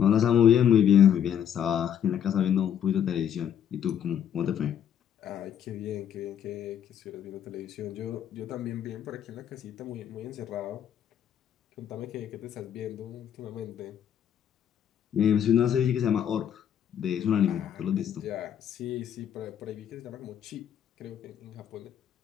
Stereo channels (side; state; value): right; quieter; 9.3 dB